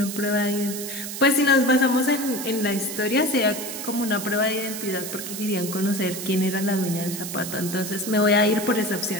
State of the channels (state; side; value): noise; right; hiss, 7 dB below the sound